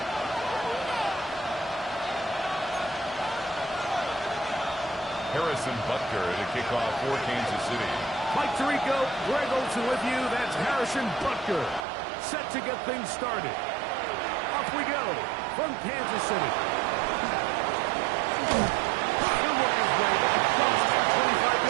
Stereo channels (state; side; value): drops out; left; at 11.9 s